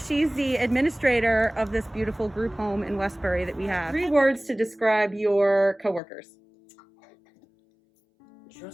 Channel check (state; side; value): drops out; right; at 6.0 s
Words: the administrator of this beautiful group home in Westbury that we have. 3 words to describe your coworkers.